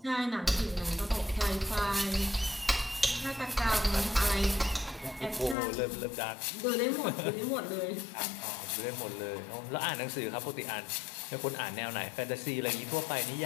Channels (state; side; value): drops out; right; at 5.6 s